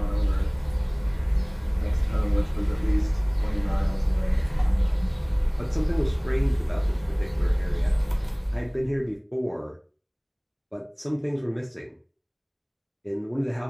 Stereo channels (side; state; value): both; identical; correlation 1.00